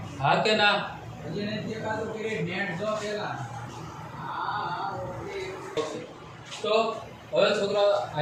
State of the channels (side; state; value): both; identical; correlation 1.00